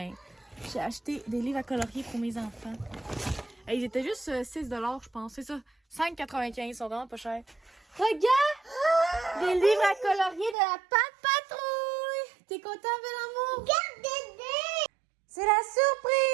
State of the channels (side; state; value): left; drops out; at 10.6 s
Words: j'ai acheté des livres à colorier pour mes enfants. Et ils étaient juste 6 $, je pense, c'est ça. 5,95 $, ils sont vraiment pas chers. Regarde! Des livres à colorier de la Pat' Patrouille! T'es content, bel amour? C'est la